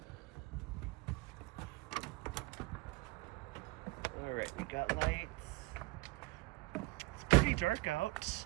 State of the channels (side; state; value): left; quieter; 22.3 dB